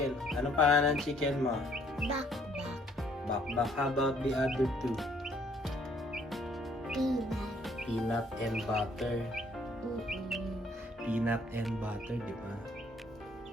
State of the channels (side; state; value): both; normal; correlation 0.64